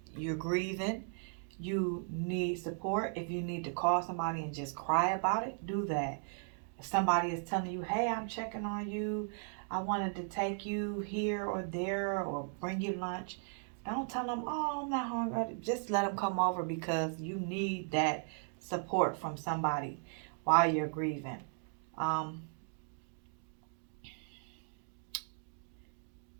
You're grieving. You need support. If you need to call somebody and just cry about it, do that. If somebody is telling you, hey, I'm checking on you, I wanted to take you here or there or bring you lunch, don't tell them, oh, I'm not hungry. Just let them come over because you need that support from somebody while you're grieving. Um,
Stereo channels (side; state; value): left; silent; 53 dB below the other